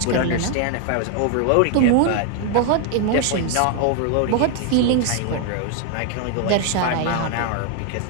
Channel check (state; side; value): different; both; correlation 0.01